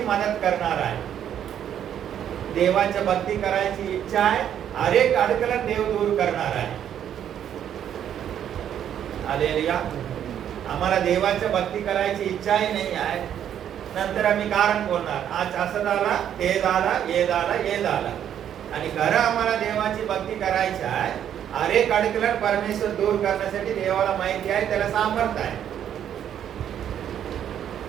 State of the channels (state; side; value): quieter; left; 9.8 dB